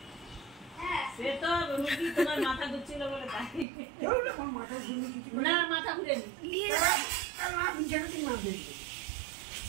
সে তো রুগী তোমার মাথা ঘুরছিল বলে তাই আমার মাথা ঘুরলে কিছু না, মাথা ঘুরেনি না, বিছানাতে না দেখবে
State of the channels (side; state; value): left; drops out; at 3.7 s